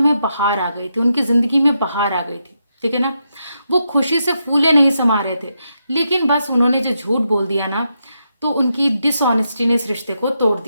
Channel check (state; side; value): inverted; both; correlation -0.83